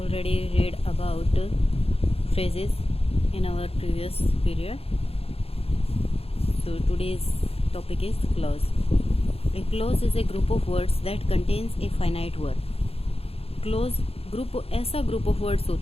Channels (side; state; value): right; late; 0.28 ms